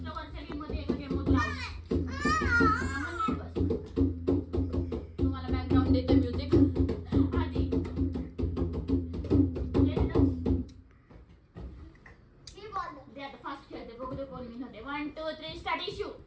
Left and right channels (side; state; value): both; identical; correlation 1.00